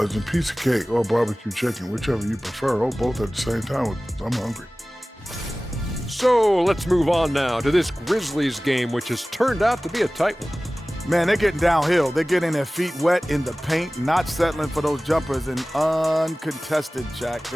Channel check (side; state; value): both; normal; correlation 0.98